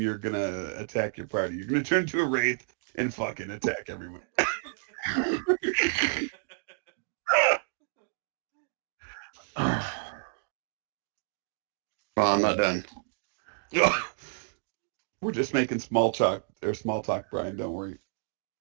going to attack your party. You're going to turn into a wraith and fucking attack everyone. Well, I'm not done. We're just making small talk, Brian. Don't worry.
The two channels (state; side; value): silent; left; digital silence